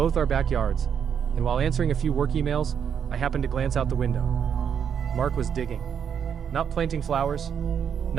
our backyards, and while answering a few work emails, I happened to glance out the window. Mark was digging. Not planting flowers,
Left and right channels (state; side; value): quieter; left; 7.8 dB